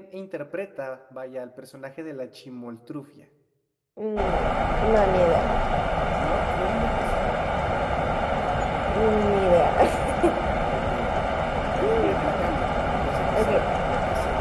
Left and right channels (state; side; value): identical; both; correlation 1.00